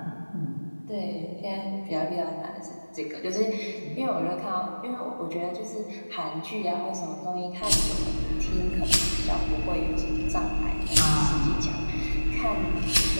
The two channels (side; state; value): both; inverted; correlation -1.00